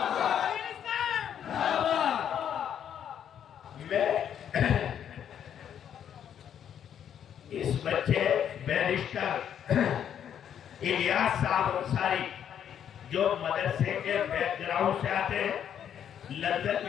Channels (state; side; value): quieter; right; 9.2 dB